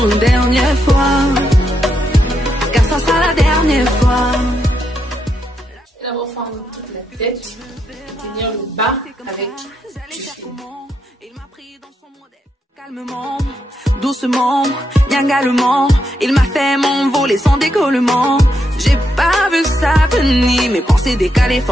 une dernière fois, car ça sera la dernière fois. Je vais d'abord fendre toute la tête, tenir le bas avec du fil. Il m'a pris dans son modèle. Calmement, doucement, niangalement, il m'a fait m'envoler sans décollement. J'ai pas vu ça venir, mes pensées décalées,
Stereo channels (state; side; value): normal; both; correlation 0.81